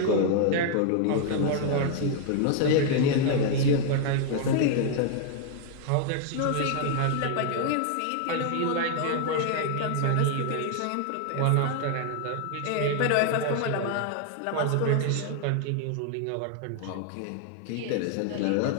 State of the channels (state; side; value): different; both; correlation 0.00